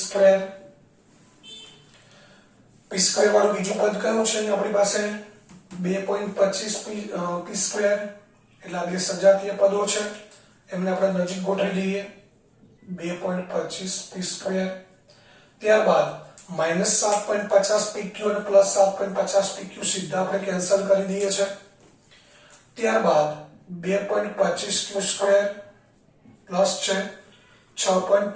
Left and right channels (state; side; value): identical; both; correlation 1.00